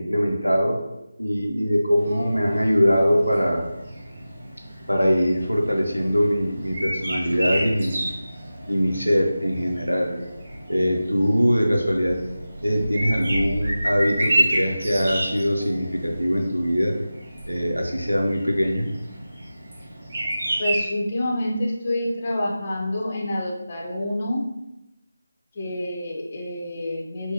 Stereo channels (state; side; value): inverted; both; correlation -0.95